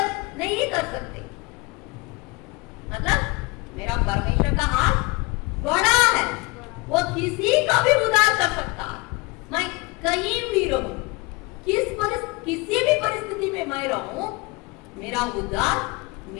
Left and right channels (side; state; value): right; quieter; 24.9 dB